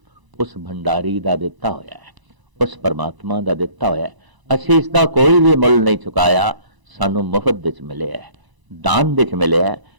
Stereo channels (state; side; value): late; left; 1.0 ms